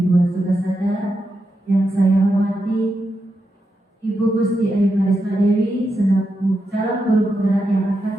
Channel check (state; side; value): normal; both; correlation 0.86